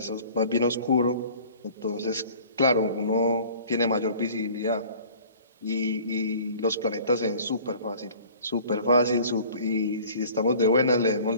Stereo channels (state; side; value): inverted; both; correlation -0.48